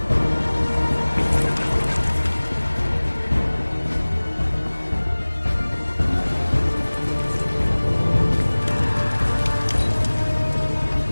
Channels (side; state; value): both; inverted; correlation -1.00